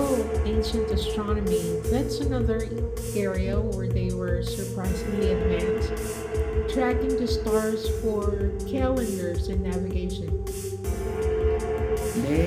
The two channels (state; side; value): identical; both; correlation 1.00